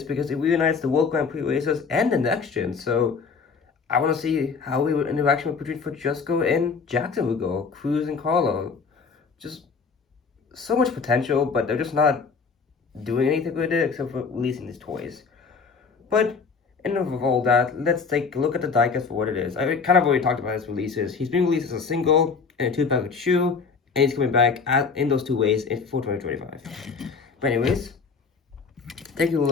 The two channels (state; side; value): quieter; right; 5.2 dB